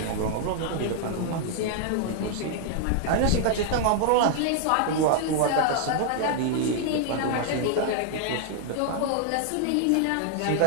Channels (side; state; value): both; different; correlation 0.00